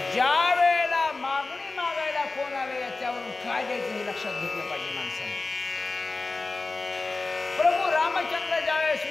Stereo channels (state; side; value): quieter; right; 3.6 dB